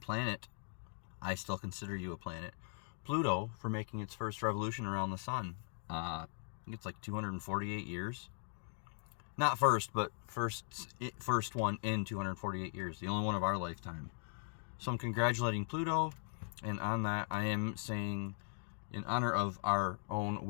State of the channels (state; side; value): silent; right; 52 dB below the other